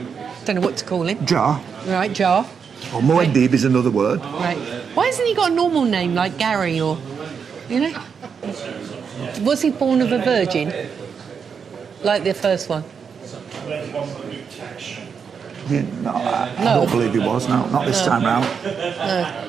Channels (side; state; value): left; quieter; 6.4 dB